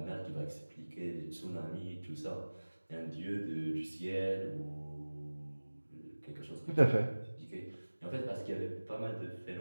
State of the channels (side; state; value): both; inverted; correlation -1.00